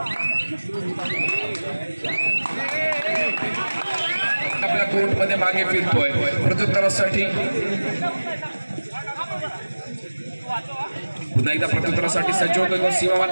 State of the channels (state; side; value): inverted; both; correlation -1.00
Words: आपल्या कोर्टमध्ये मागे फिरतोय प्रत्युत्तरासाठी पुन्हा एकदा प्रत्युत्तरासाठी सज्ज होतोय तो